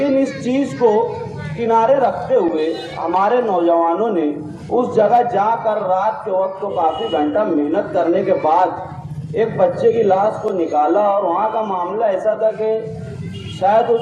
इस चीज़ को किनारे रखते हुए हमारे नौजवानों ने उस जगह जाकर रात के वक्त तो काफ़ी घंटा मेहनत करने के बाद एक बच्चे की लाश को निकाला। और वहाँ का मामला ऐसा था कि शायद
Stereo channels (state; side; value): identical; both; correlation 1.00